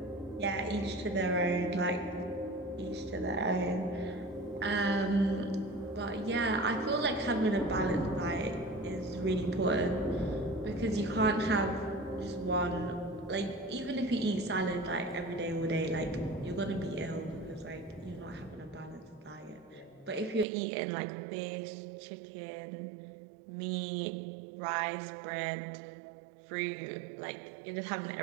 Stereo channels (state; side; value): drops out; left; at 20.5 s